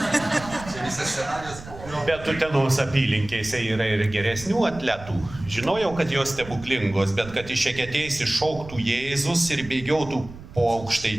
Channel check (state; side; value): noise; right; rumble, 16 dB below the sound